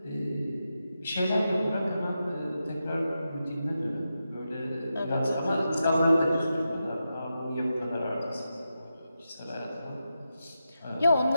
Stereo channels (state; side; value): inverted; both; correlation -0.89